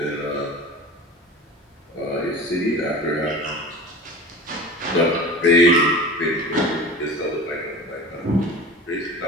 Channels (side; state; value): both; normal; correlation 0.36